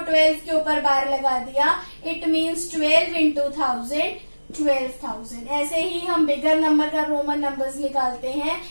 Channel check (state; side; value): inverted; both; correlation -1.00